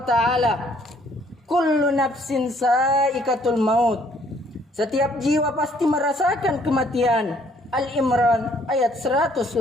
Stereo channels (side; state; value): both; normal; correlation 0.64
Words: Kullu nafsin sa'iqatul maut. Setiap jiwa pasti merasakan kematian. Al-Imran ayat